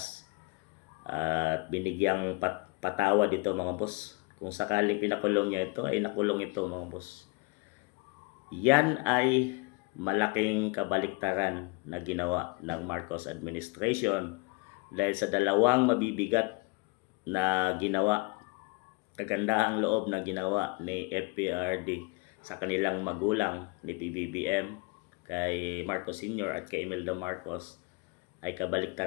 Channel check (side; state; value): right; quieter; 26.8 dB